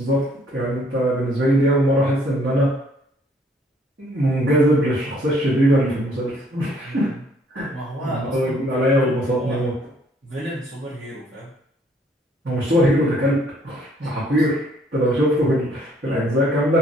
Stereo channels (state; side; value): normal; both; correlation 0.63